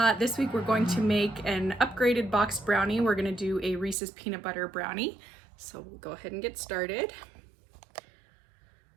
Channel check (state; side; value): drops out; left; at 4.0 s